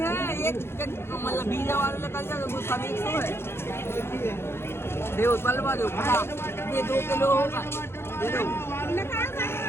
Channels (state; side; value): late; right; 0.12 ms